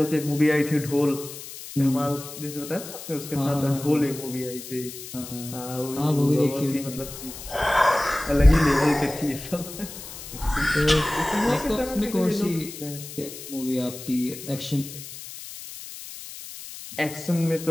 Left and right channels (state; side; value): noise; left; hiss, 12 dB below the sound